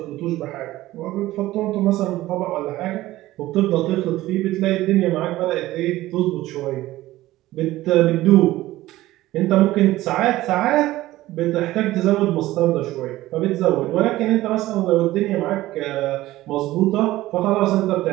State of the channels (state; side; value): quieter; left; 16.4 dB